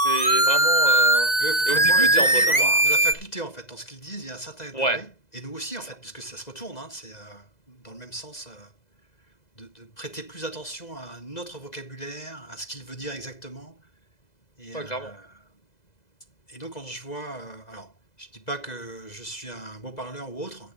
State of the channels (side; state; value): right; late; 2.0 ms